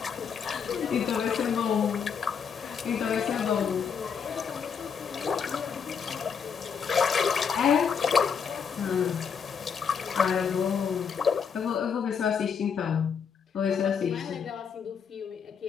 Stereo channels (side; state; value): right; quieter; 6.7 dB